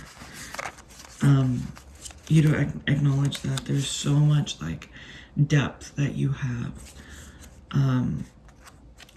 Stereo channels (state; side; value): identical; both; correlation 1.00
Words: you to acknowledge that there's so much like depth that you have